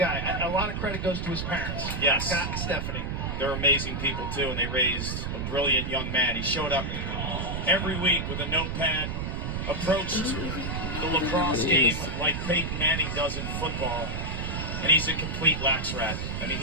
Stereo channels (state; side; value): noise; right; rumble, 3 dB below the sound